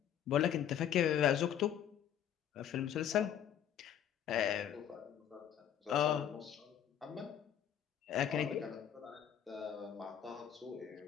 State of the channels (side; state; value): right; quieter; 9.6 dB